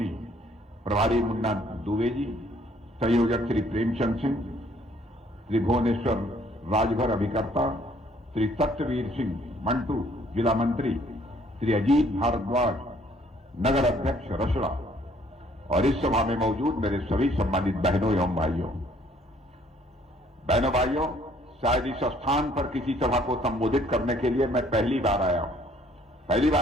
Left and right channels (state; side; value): normal; both; correlation 0.62